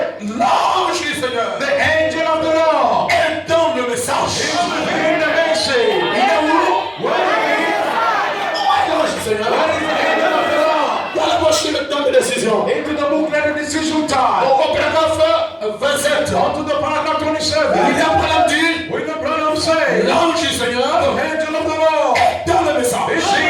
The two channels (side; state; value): both; identical; correlation 1.00